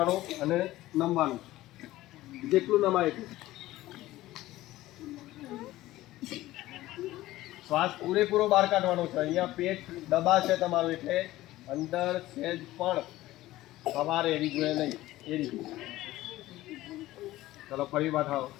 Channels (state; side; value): quieter; right; 16.4 dB